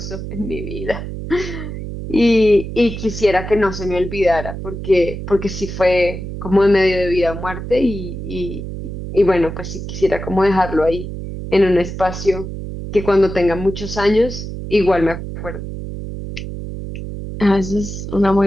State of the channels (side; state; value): right; noise; hum, 8 dB below the sound